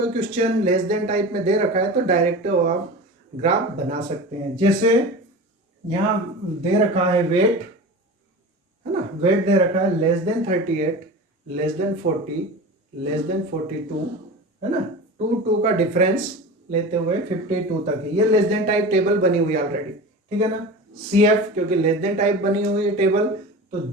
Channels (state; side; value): normal; both; correlation 0.32